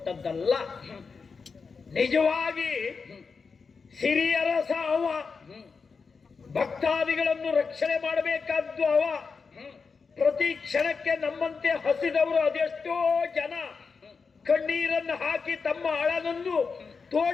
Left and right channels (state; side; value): quieter; right; 5.0 dB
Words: ನಿಜವಾಗಿ ಸಿರಿಯರಸ ಅವ, ಭಕ್ತಾದಿಗಳನ್ನು ರಕ್ಷಣೆ ಮಾಡಬೇಕಾದ್ದು ಅವ. ಪ್ರತಿ ಕ್ಷಣಕ್ಕೆ ನಮ್ಮಂತೆ ಹಸಿದವರು ಅದೆಷ್ಟೋ ಜನ ಕಣ್ಣೀರನ್ನು ಹಾಕಿ ತಮ್ಮ ಅಳನನ್ನು